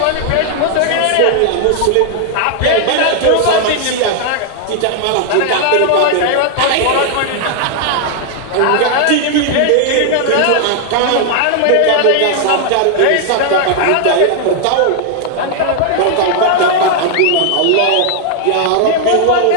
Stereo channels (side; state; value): both; different; correlation 0.00